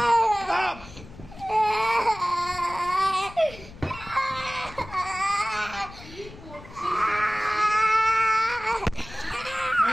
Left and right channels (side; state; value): left; noise; rumble, 17 dB below the sound